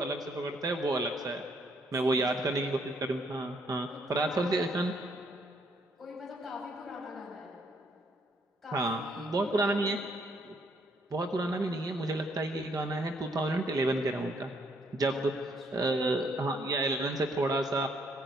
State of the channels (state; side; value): normal; both; correlation 0.69